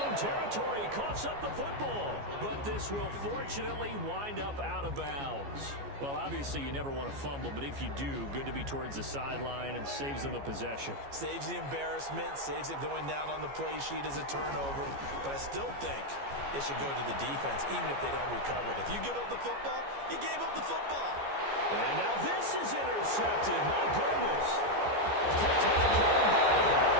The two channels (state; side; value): late; left; 14 ms